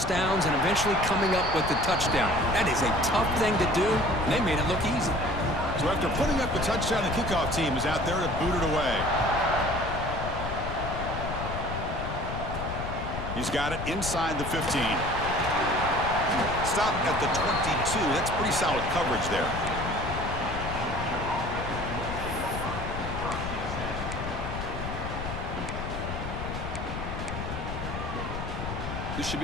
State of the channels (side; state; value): left; noise; rumble, 6 dB below the sound